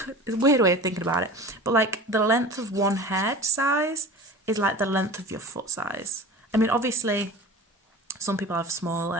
weird way of thinking about it. But like the length of one head size is like the length of your foot size. I mean, obviously, some people have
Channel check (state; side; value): normal; both; correlation 0.36